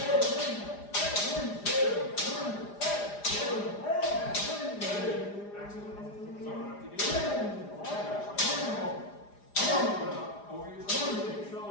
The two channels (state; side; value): late; right; 4.9 ms